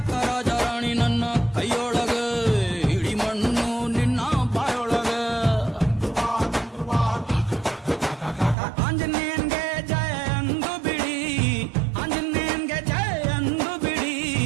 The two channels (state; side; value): drops out; left; at 8.6 s